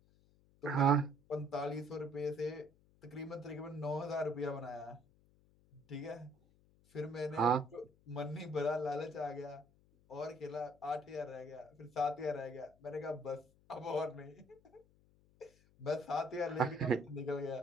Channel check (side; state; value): left; noise; hum, 30 dB below the sound